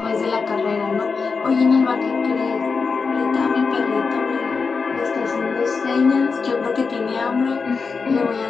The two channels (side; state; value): right; quieter; 4.9 dB